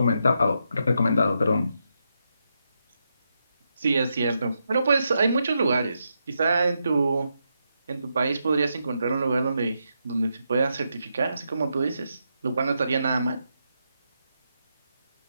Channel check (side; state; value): both; inverted; correlation -0.83